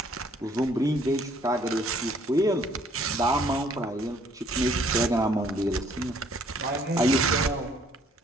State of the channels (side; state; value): both; normal; correlation 0.62